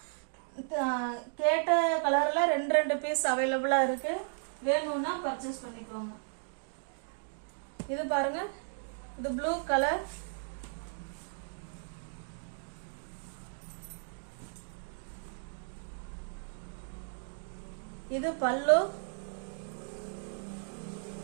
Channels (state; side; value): silent; left; digital silence